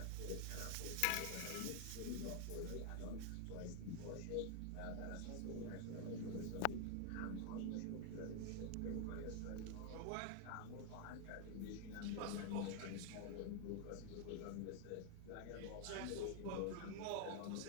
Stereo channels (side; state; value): both; different; correlation 0.00